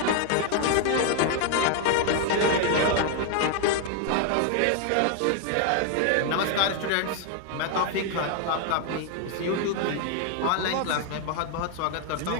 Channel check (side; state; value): both; different; correlation 0.00